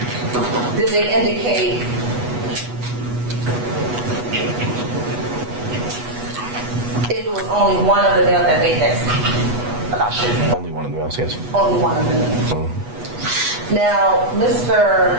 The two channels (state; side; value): late; left; 8.2 ms